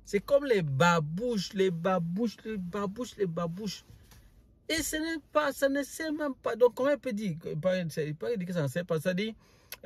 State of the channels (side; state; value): both; identical; correlation 1.00